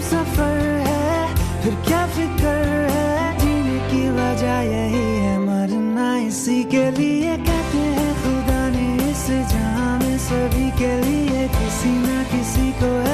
सफर है, फिर क्या फिक्र है, जीने की वजह यही है, मरना इसी के लिए। कहते हैं खुदा ने इस जहां में सभी के लिए किसी ना किसी को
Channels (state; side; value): identical; both; correlation 1.00